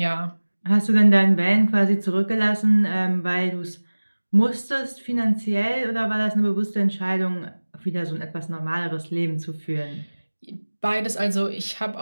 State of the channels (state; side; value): inverted; both; correlation -1.00